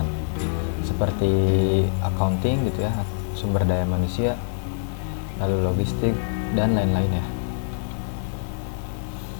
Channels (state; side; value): silent; right; 57 dB below the other